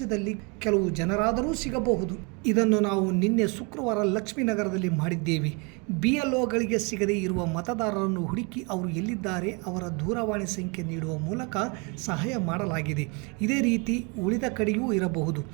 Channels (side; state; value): left; quieter; 30.9 dB